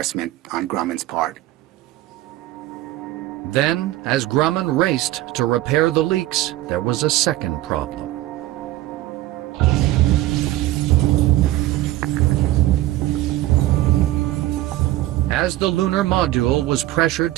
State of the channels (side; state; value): left; quieter; 15.7 dB